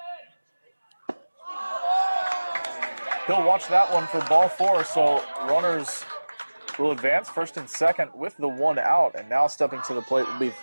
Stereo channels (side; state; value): both; inverted; correlation -1.00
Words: He'll watch that one for ball 4, so runners will advance first and second with the 1 out, and now stepping to the plate will be